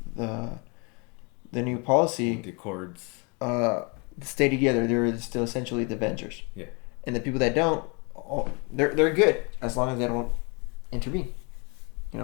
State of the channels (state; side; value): quieter; right; 31.8 dB